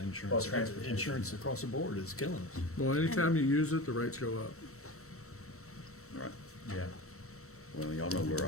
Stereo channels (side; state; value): right; late; 0.64 ms